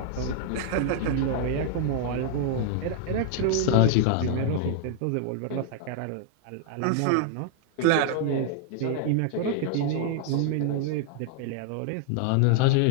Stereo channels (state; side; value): different; both; correlation 0.00